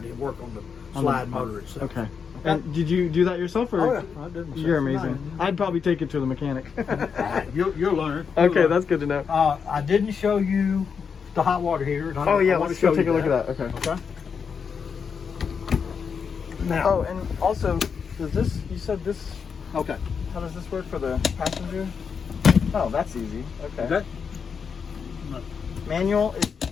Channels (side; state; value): right; quieter; 6.2 dB